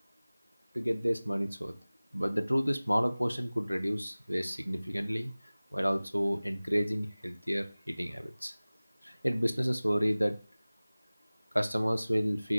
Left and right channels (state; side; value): inverted; both; correlation -0.99